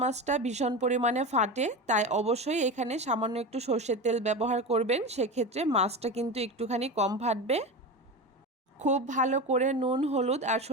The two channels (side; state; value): both; normal; correlation 0.24